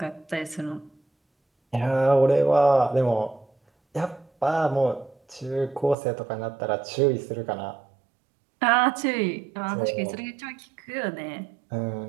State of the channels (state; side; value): drops out; left; at 6.0 s